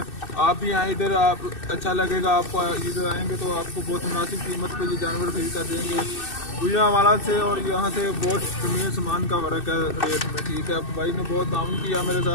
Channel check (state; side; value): late; right; 2.6 ms